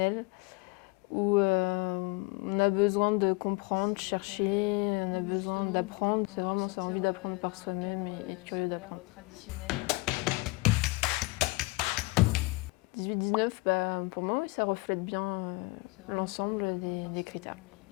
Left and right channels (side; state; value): right; quieter; 24.7 dB